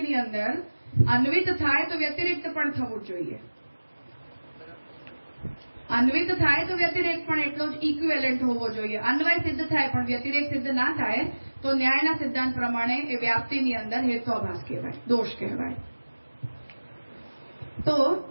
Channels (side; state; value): both; inverted; correlation -1.00